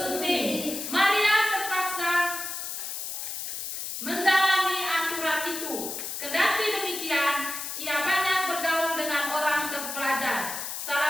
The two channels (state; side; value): noise; left; hiss, 5 dB below the sound